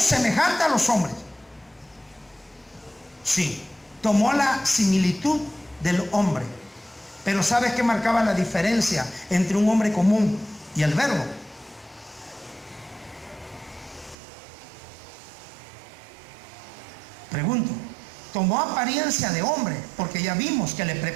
semejante a los hombres. Sí, tomó la similitud del hombre. Pero ¿sabes qué marcaba la diferencia entre un hombre común y el Verbo? Pregunto. Tomó apariencia de hombre, porque ya vimos que le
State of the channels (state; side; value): drops out; left; at 14.2 s